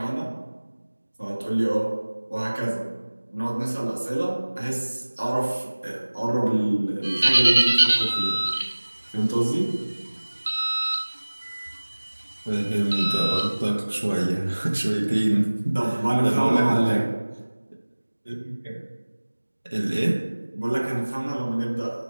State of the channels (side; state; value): both; inverted; correlation -1.00